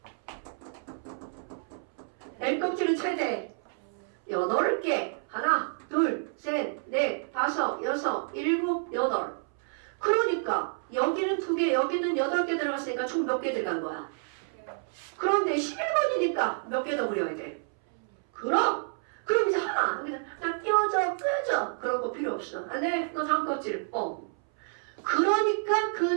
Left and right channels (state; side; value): silent; left; 58 dB below the other